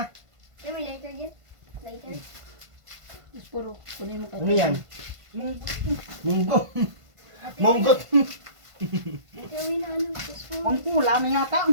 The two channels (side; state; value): left; late; 1.5 ms